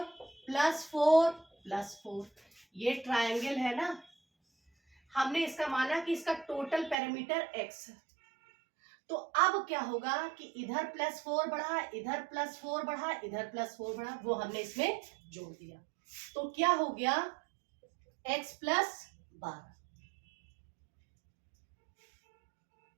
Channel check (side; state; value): left; drops out; at 7.0 s